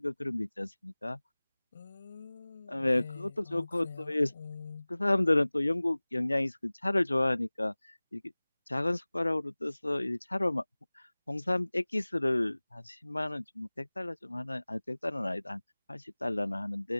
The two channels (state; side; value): inverted; both; correlation -1.00